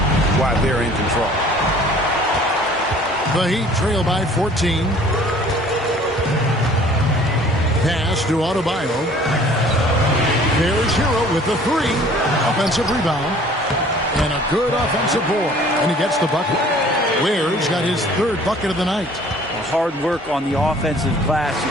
why they're in control. The Heat trail by 14. Pass to Adebayo. There's Hero with the 3. Offensive rebound. And a good offensive board. And he gets the bucket. Ware's got his third bucket of the night. Hard work on the offensive glass. You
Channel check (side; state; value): both; normal; correlation 0.52